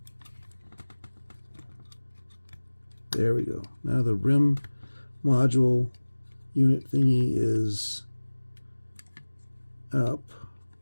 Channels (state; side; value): inverted; both; correlation -1.00